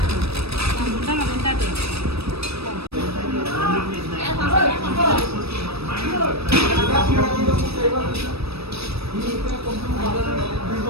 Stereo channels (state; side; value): late; left; 0.78 ms